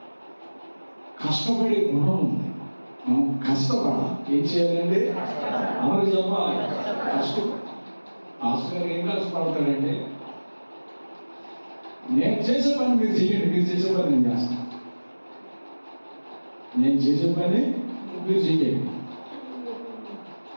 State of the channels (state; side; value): inverted; both; correlation -1.00